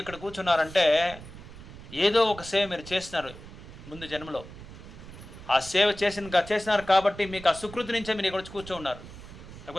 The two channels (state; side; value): noise; right; rumble, 15 dB below the sound